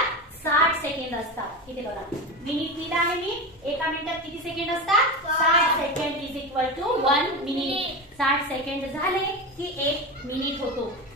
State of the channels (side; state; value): both; normal; correlation 0.22